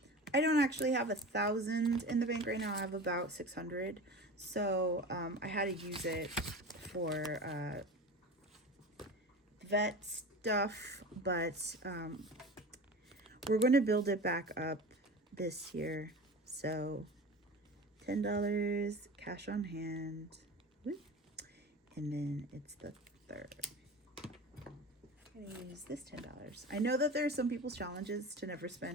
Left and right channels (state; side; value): normal; both; correlation 0.32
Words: I don't actually have 1,000 in the bank right now. I have about 600. So I had to use it for vet stuff, but we're going to build it back up this year. So $10 cash on hand. Woo. And then it's the third. I'm gonna use this $10. I know that there are some people's challenges to never